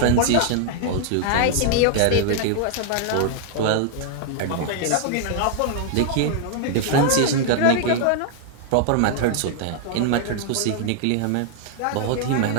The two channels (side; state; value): both; different; correlation -0.01